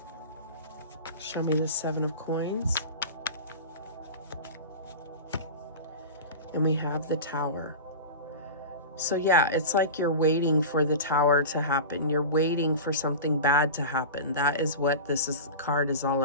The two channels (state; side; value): inverted; both; correlation -0.30